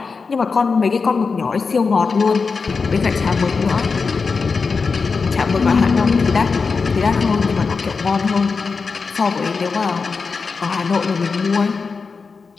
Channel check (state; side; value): quieter; right; 4.8 dB